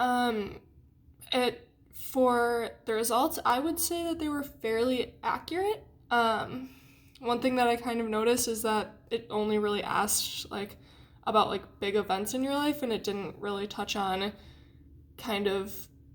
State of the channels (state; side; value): identical; both; correlation 1.00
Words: It For the results, I would say that they were fairly accurate. One thing that I kind of noticed is that it only really asked about big events in your life, and it didn't really touch on kind of